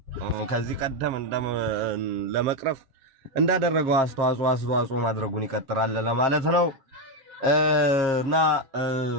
ከዚህ ቀደም ለመቅረፍ እንዳደረገው አስተዋጽኦ ማድረጉን ይቀጥላል ለማለት ነው። እና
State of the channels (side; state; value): left; late; 7.5 ms